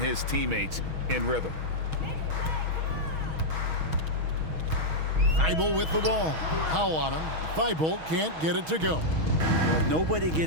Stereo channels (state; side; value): late; left; 6.3 ms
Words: teammates in rhythm. Thibault with the ball. Powell on him. Thibault can't get it to go. Nobody